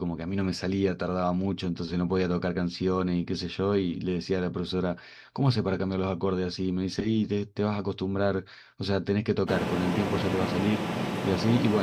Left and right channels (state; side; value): identical; both; correlation 1.00